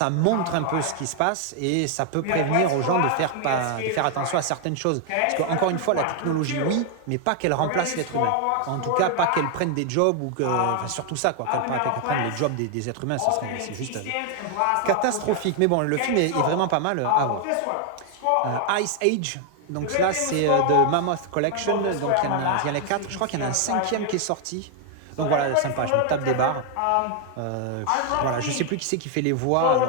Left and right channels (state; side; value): different; both; correlation 0.00